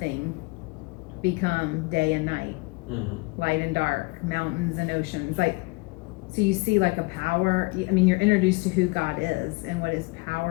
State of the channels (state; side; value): quieter; right; 26.4 dB